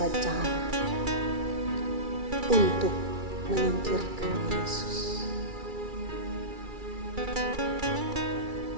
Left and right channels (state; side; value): late; left; 2.3 ms